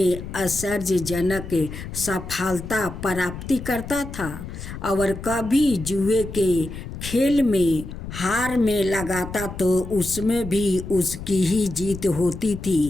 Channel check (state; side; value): noise; left; rumble, 10 dB below the sound